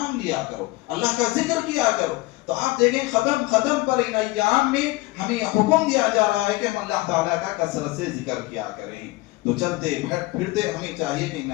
لیا کرو، اللہ کا ذکر کیا کرو۔ تو آپ دیکھیں قدم قدم پر ان ایام میں ہمیں حکم دیا جا رہا ہے کہ ہم اللہ تعالیٰ کا کثرت سے ذکر کیا کریں۔ تو چلتے پھرتے ہمیں چاہیے کہ ان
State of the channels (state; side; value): quieter; right; 20.6 dB